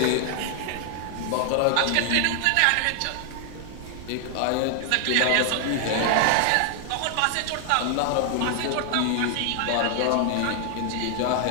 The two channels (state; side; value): different; both; correlation 0.00